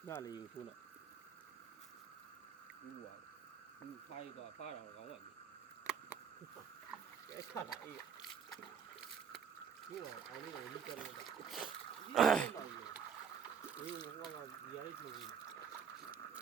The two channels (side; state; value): left; quieter; 7.4 dB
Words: နားလေးကိုထိုးလိုက်ဘူးပါဘူးဖိုင်တော့ဖားတော့ကောင်းပါပြီအဲ့ဆက်တာအေးဘူးအောင်အောင်လေးကိုလိကျလို့တာဒီဟိုကဒီရိုက်လို့